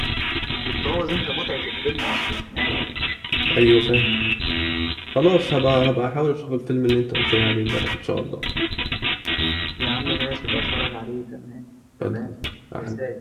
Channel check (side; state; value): both; identical; correlation 1.00